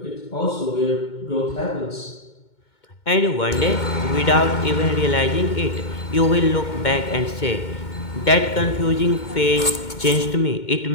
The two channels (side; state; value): right; late; 2.2 ms